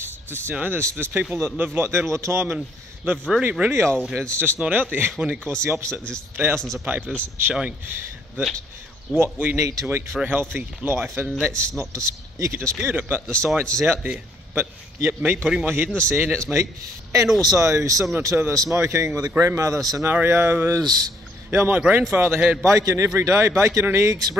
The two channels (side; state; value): both; normal; correlation 0.67